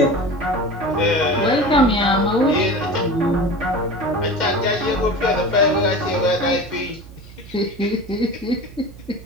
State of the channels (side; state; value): right; noise; hum, 18 dB below the sound